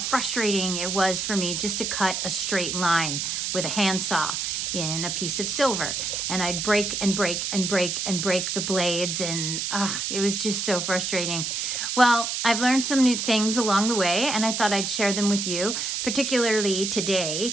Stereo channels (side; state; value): right; noise; hiss, 2 dB below the sound